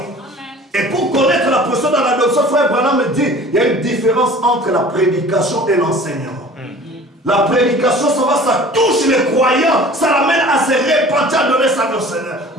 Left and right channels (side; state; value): both; normal; correlation 0.45